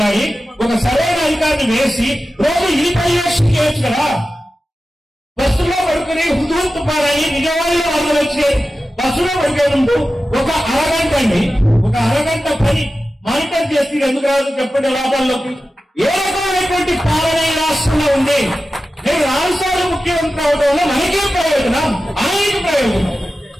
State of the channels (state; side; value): normal; both; correlation 0.94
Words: ఒక సరైన అధికారిని వేసి రోజు ఈ పర్యవేక్షణ చేయొచ్చు కదా. బస్సులో పడుకుని హుతుహుతు పారని విజయవాడలో వాళ్ళు వచ్చి బస్సులో పడికే ముందు ఒక అరగంట పని మానిటర్ చేసి ఎందుకు రాదు చెప్పండి లాభాల్లోకి? ఏ రకమైనటువంటి పాలన ఈ రాష్ట్రంలో ఉంది? నేను 4 సార్లు ముఖ్యమంత్రి అవడం వల్ల మనకేం ప్రయోజనం? ఆయనకు